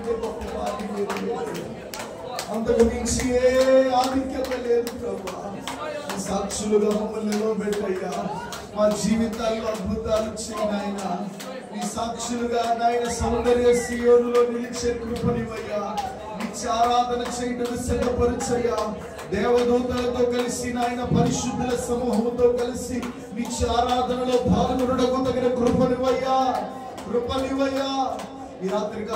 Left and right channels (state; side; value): identical; both; correlation 1.00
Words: గొప్ప భాగ్యం లేదు. అంతకు మించి ఏ ఆధిక్యత లేదు ప్రభువా. సాక్షులుగా మమ్మల్ని నిలబెట్టయ్యా. మా జీవితాల్లో అద్భుతాలు చేయనాయన. నీ సాక్షులుగా నాయన సౌందర్య సియోనులో నిలిచే కృపనివయ్యా. నిత్య ఆరాధన చేయడం సిద్ధపరచయ్యా. దేవదూతలతో కలిసి నాయన పరిశుద్ధుల సమూహంతో కలిసి నిత్య ఆరాధనలో పాల్గొనడం తగిన కృపనివయ్యా. ఈ